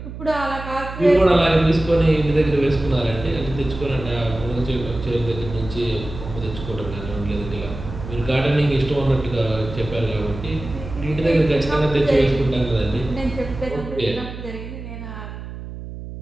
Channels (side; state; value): right; noise; hum, 10 dB below the sound